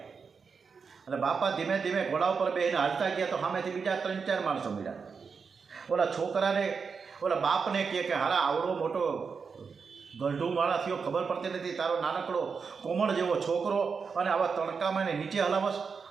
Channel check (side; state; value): left; quieter; 5.5 dB